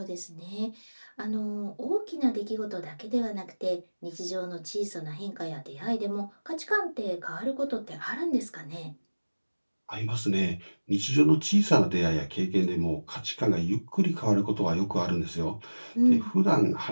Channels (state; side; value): inverted; both; correlation -1.00